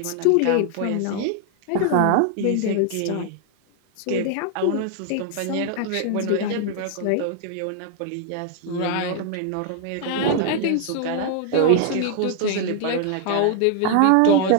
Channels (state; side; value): different; both; correlation 0.00